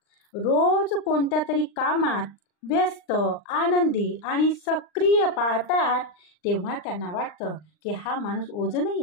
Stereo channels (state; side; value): late; right; 39 ms